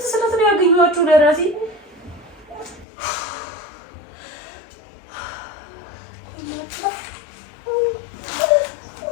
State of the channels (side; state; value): right; drops out; at 2.9 s